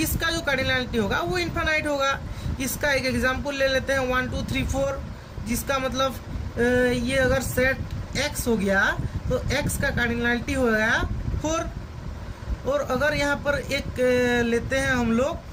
जो कार्डिनलिटी होगा वो इन्फानाइट होगा। इसका एक एग्जांपल ले लेते हैं, 1 2 3 4, जिसका मतलब ये अगर सेट x हो गया तो x का कार्डिनलिटी हो गया 4। और अगर यहाँ पर एक लेते हैं हम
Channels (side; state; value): both; identical; correlation 1.00